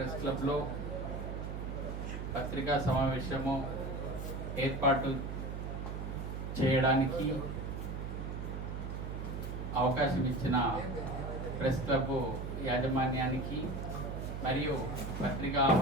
క్లబ్లో పత్రికా సమావేశము ఏర్పాటు చేయడానికి అవకాశం ఇచ్చిన ప్రెస్ క్లబ్ యాజమాన్యానికి మరియు పత్రికా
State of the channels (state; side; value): noise; right; hum, 5 dB below the sound